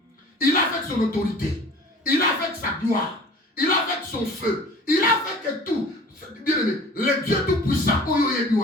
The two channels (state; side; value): normal; both; correlation 0.45